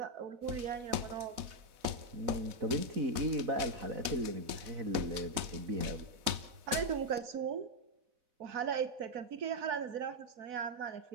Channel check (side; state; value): left; late; 4.0 ms